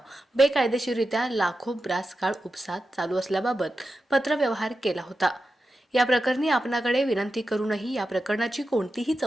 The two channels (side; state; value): both; normal; correlation 0.91